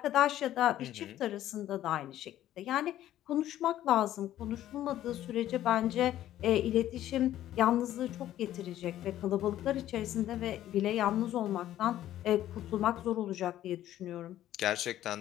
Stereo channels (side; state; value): right; quieter; 12.9 dB